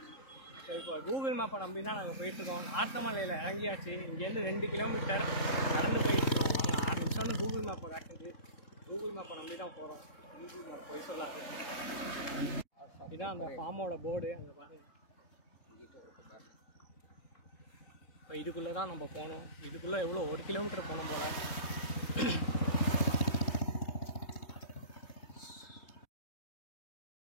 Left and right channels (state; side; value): late; right; 3.7 ms